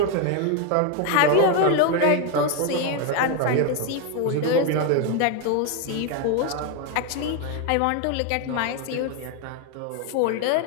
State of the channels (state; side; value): different; both; correlation 0.01